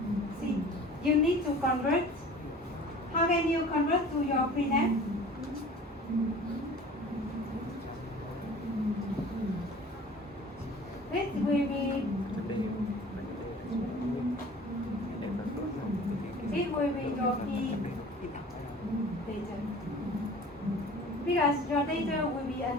See, you need to convert. How can you convert to your printf? This will be will be your P data. Because your data will be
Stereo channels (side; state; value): both; normal; correlation 0.44